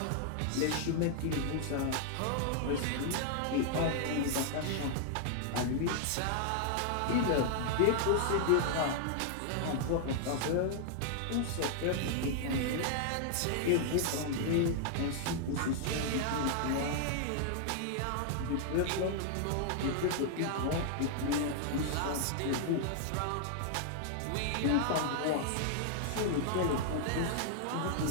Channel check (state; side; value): different; both; correlation 0.00